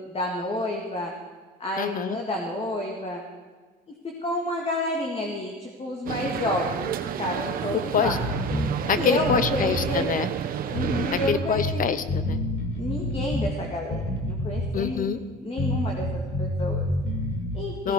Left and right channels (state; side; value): normal; both; correlation 0.35